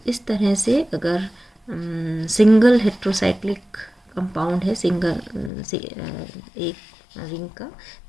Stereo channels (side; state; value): right; drops out; at 5.5 s